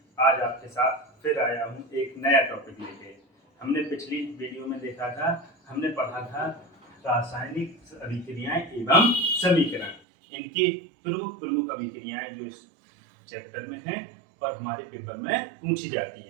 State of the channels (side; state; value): left; drops out; at 10.0 s